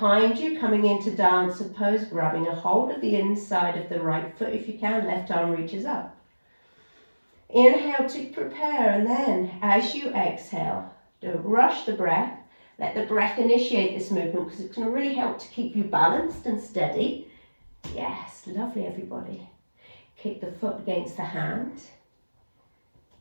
you, coming into dancer pose, grabbing a hold of the inside of the right foot if you can, left arm reaches up. Inhale to prepare, and then as you exhale, don't rush the breath. Let the breath initiate this movement because it's going to really help to keep you balanced and steady. Yes, lovely everybody. Kick the foot against the hand.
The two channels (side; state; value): both; inverted; correlation -1.00